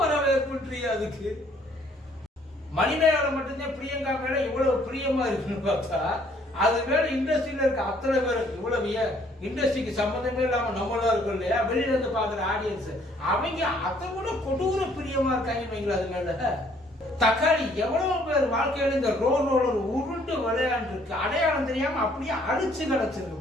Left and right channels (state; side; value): normal; both; correlation 0.62